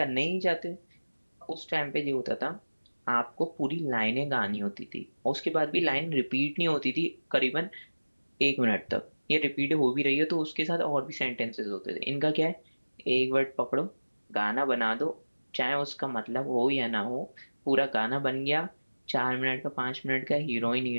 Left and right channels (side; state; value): both; inverted; correlation -1.00